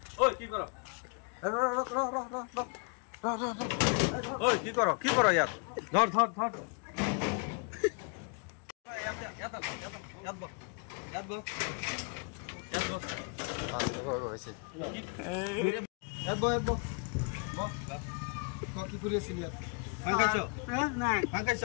ঐ কি কৰ ঐ কি কৰ ইয়াত ধৰ ধৰ ধৰ কি কৰি আছিল ইয়াত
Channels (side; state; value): right; quieter; 36.2 dB